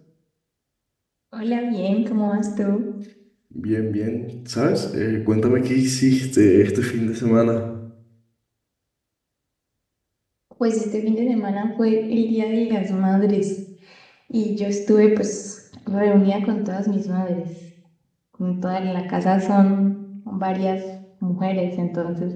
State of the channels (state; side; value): identical; both; correlation 1.00